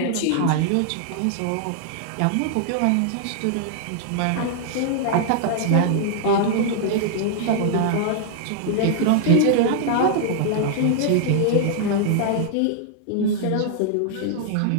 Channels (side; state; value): both; different; correlation -0.01